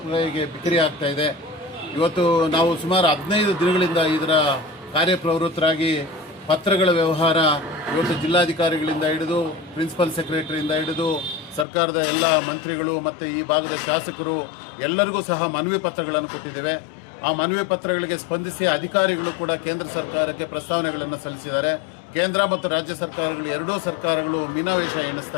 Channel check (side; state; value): right; drops out; at 11.7 s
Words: ಬಿಕ್ರಿ ಆಗ್ತಾ ಇದೆ. ಇವತ್ತು ನಾವು ಸುಮಾರು 15 ದಿನಗಳಿಂದ ಇದರ ಕಾರ್ಯಪ್ರವೃತ್ತರಾಗಿ ಪತ್ರಗಳ ವ್ಯವಹಾರ ಇವತ್ತು ಜಿಲ್ಲಾಧಿಕಾರಿಗಳಿಂದ ಹಿಡಿದು ಪ್ರಿನ್ಸಿಪಲ್ ಸೆಕ್ರೆಟರಿಯಿಂದ ಹಿಡಿದು ಸರ್ಕಾರದ ಎಲ್ಲ ಮಂತ್ರಿಗಳು ಮತ್ತು ಈ ಭಾಗದ ಶಾಸಕರು ಎಲ್ಲರಿಗೂ ಸಹ ಮನವಿ ಪತ್ರಗಳನ್ನು ಕೊಟ್ಟಿದ್ದೇವೆ. ಆ ಮನವಿ ಪತ್ರಗಳಿಗೆ ಸ್ಪಂದಿಸಿ ಅಧಿಕಾರಿಗಳು ಕೂಡ ಕೇಂದ್ರ ಸರ್ಕಾರಕ್ಕೆ ಪ್ರಸ್ತಾವನೆಗಳನ್ನು ಸಲ್ಲಿಸಿದ್ದಾರೆ. ಕೇಂದ್ರ ಮತ್ತು ರಾಜ್ಯ ಸರ್ಕಾರಗಳು ಎರಡೂ ಸರ್ಕಾರಗಳು ಮೀನಾವೇಶ